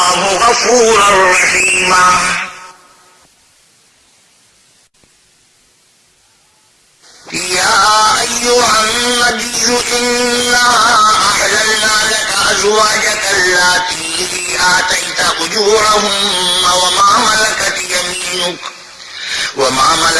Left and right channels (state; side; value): identical; both; correlation 1.00